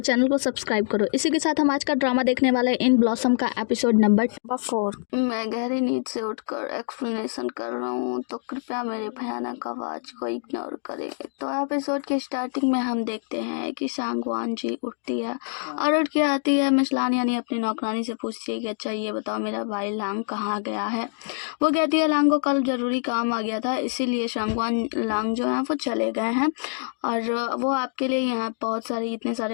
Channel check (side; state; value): right; silent; digital silence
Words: को सब्सक्राइब करो। इसी के साथ हम आज का ड्रामा देखने वाले इन ब्लॉसम का एपिसोड नंबर 4। मैं गहरी नींद से उठकर एक्सप्लेनेशन कर रहा हूँ, तो कृपया मेरे भयानक आवाज को इग्नोर करें। तो एपिसोड की स्टार्टिंग में हम देखते हैं कि सांगवान जी उठती है और उठ के आती है। मिस लान यानी अपनी नौकरानी से पूछती है कि अच्छा ये बताओ मेरा भाई लांग कहाँ गया है। वो कहती है लांग को कल जरूरी काम आ गया था, इसीलिए सांगवान लांग जो है वो चले गए हैं और वो आपके लिए यहाँ बहुत सारे इतने सारे